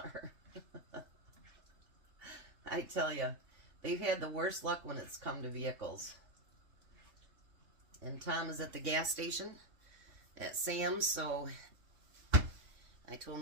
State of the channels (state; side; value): late; left; 3.6 ms